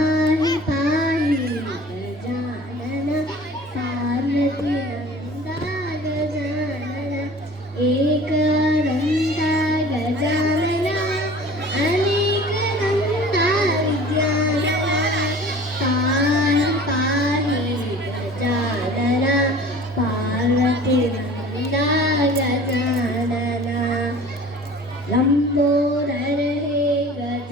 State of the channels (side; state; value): both; normal; correlation 0.44